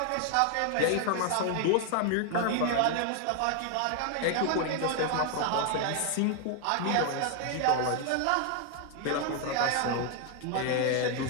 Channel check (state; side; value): different; both; correlation 0.01